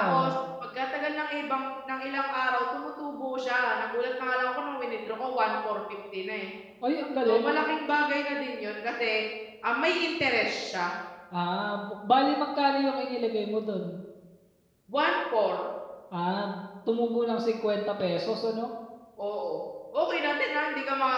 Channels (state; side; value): identical; both; correlation 1.00